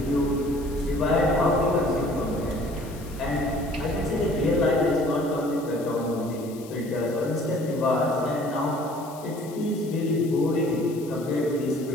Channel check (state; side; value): noise; left; hiss, 20 dB below the sound